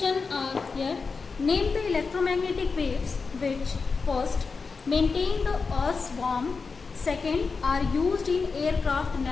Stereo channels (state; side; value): quieter; right; 4.7 dB